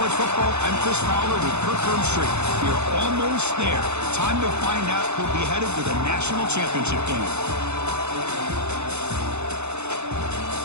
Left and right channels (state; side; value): late; left; 0.81 ms